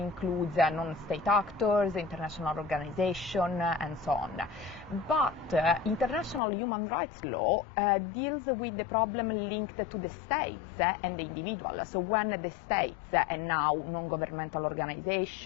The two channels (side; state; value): right; drops out; at 6.4 s